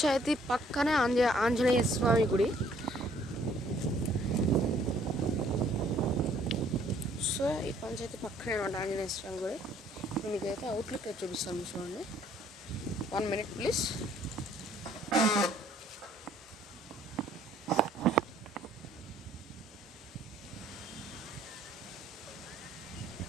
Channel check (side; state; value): both; normal; correlation 0.61